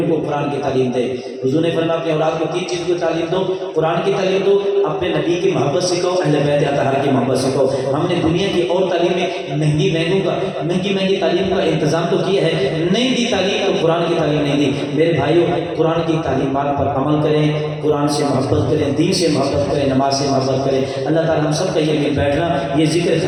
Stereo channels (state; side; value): identical; both; correlation 1.00